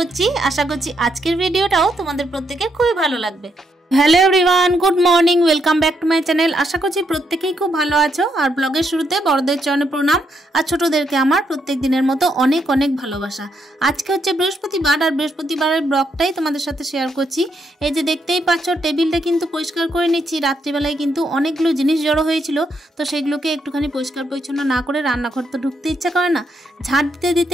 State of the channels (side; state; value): both; normal; correlation 0.77